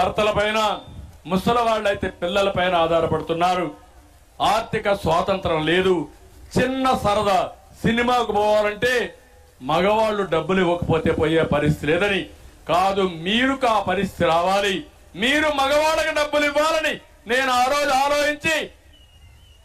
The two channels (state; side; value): identical; both; correlation 1.00